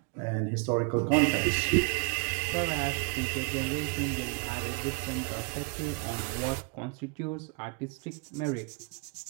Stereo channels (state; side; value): quieter; left; 36.0 dB